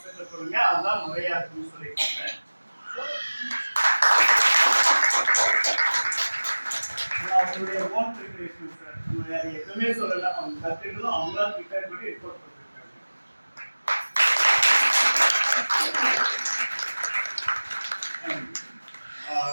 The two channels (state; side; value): inverted; both; correlation -1.00